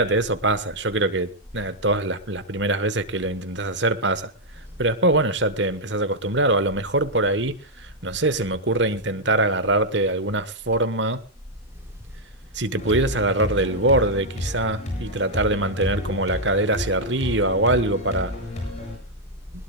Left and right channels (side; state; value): both; normal; correlation -0.04